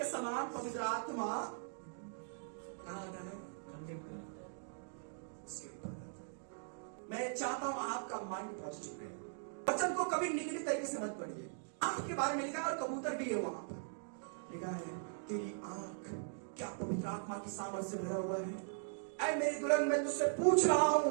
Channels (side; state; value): left; silent; digital silence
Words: समान पवित्र आत्मा कहां आता है? मैं चाहता हूं आपका माइंड पॉजिटिव रहे। वचन को कभी निगेटिव तरीके से मत पढ़िए। आंख के बारे में लिखा है और कबूतर भी है, वहां पर लिखा है तेरी आंख क्या पवित्र आत्मा की सामर्थ्य से भरा हुआ है? ऐ मेरी दुल्हन, मैं तुझसे पूछ रहा